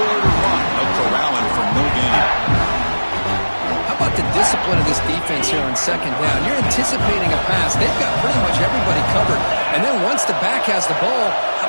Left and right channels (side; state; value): both; inverted; correlation -1.00